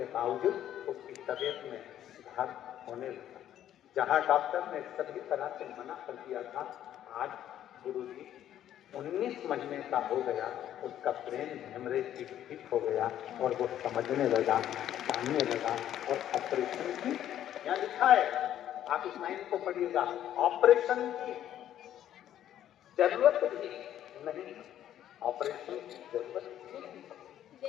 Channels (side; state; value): right; quieter; 11.3 dB